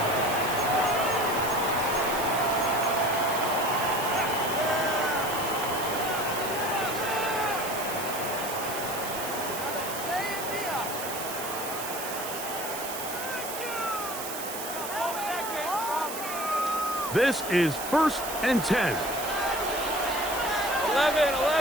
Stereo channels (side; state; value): right; noise; hiss, 7 dB below the sound